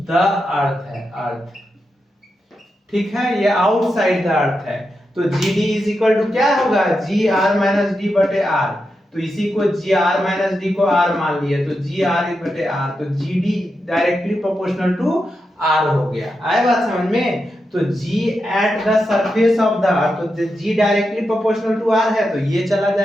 अर्थ है, अर्थ, ठीक है, ये आउटसाइड द अर्थ है। तो g d is equal to क्या होगा, जी आर माइनस डी बटे आर। तो इसी को जी आर माइनस डी को आर मान लिया, तो जी आर बटे आर, तो g d directly proportional to r हो गया। आए बात समझ में। तो g at the surface of the earth, तो g directly proportional to r है तो ये चला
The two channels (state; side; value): normal; both; correlation 0.87